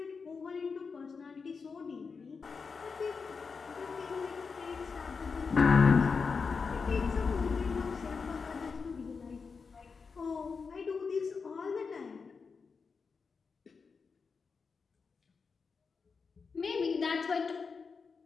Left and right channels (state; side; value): quieter; right; 5.1 dB